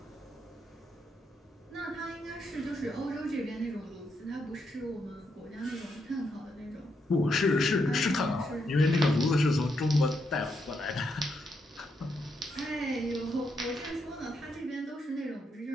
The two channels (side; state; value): both; normal; correlation 0.80